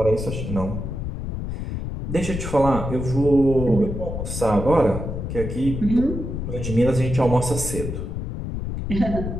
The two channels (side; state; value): left; noise; rumble, 5 dB below the sound